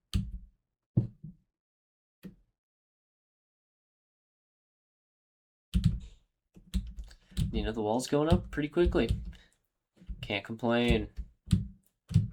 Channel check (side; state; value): both; identical; correlation 1.00